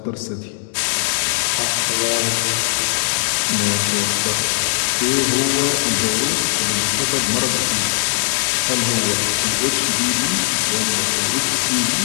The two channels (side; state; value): right; silent; 67 dB below the other